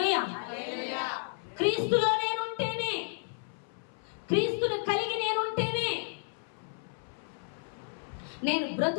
క్రీస్తులో నేనుంటేనే, క్రీస్తుని కలిగి నేనుంటేనే, నేను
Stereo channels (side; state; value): right; silent; 56 dB below the other